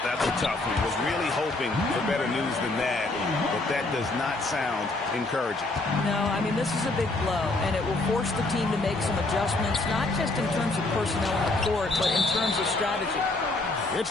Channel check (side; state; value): right; quieter; 3.0 dB